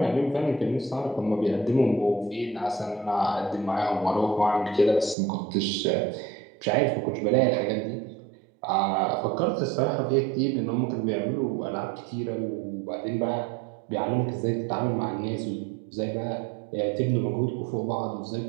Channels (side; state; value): left; drops out; at 5.2 s